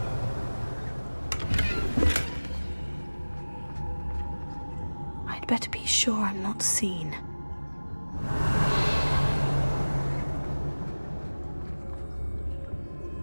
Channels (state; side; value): inverted; both; correlation -1.00